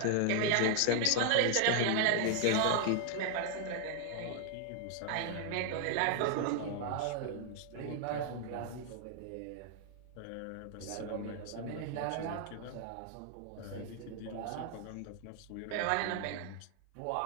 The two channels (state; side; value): different; both; correlation 0.00